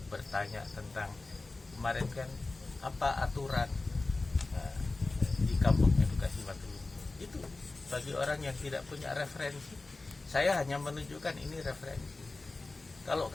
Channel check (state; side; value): quieter; right; 3.4 dB